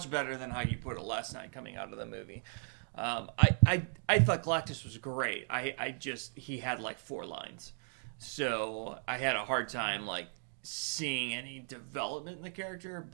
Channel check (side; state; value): left; silent; 54 dB below the other